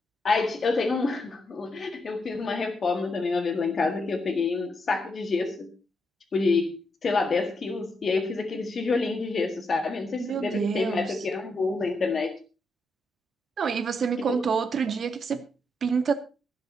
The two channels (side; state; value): both; normal; correlation 0.80